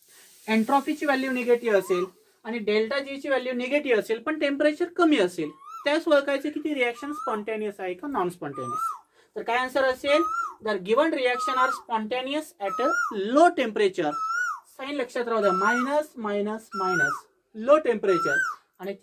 एंट्रॉपीची व्हॅल्यू निगेटिव्ह असेल आणि डेल्टा जी ची व्हॅल्यू निगेटिव्ह असेल पण टेम्परेचर कमी असेल, त्यास ओळखायचे की ती रिएक्शन स्पॉन्टॅनियस आहे का नॉन स्पॉन्टॅनियस. तर काय आन्सर असेल, जर given reaction are spontaneous at a low temperature, sign लक्षात राहू द्या, minus minus minus low temperature आणि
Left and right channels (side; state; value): both; identical; correlation 1.00